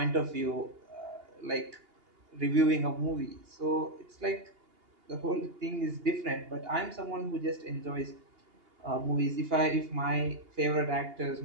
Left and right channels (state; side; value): late; left; 2.8 ms